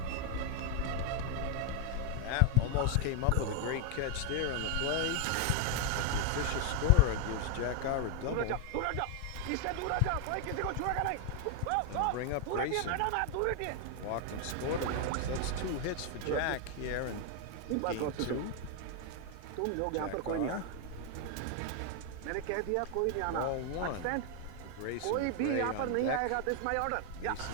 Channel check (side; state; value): both; different; correlation 0.01